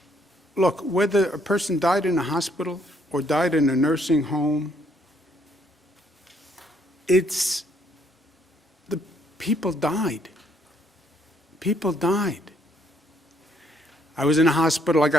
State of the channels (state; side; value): normal; both; correlation 0.68